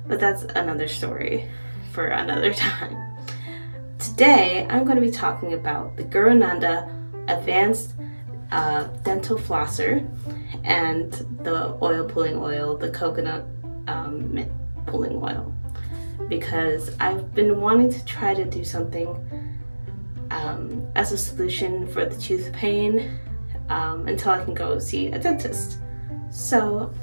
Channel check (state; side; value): inverted; both; correlation -1.00